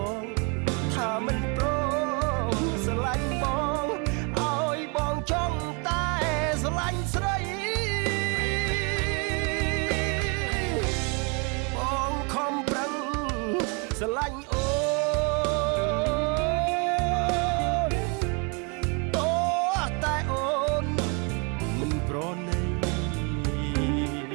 ងថាមិនព្រមស្រឡាញ់បងឲ្យបងចង់តែស្រឡាញ់ស្រីបងខំប្រឹងស្រឡាញ់អូនអូតែអូនមិនប្រណី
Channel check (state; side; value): quieter; left; 33.5 dB